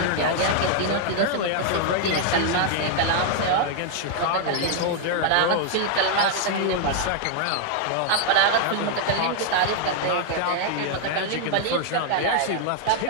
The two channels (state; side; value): different; both; correlation 0.00